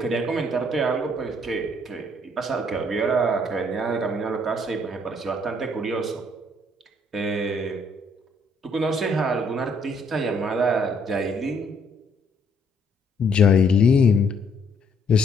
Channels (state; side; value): normal; both; correlation 0.67